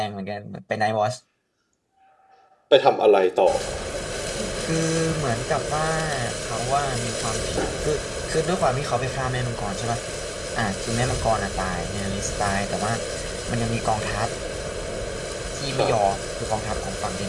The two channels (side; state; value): both; identical; correlation 1.00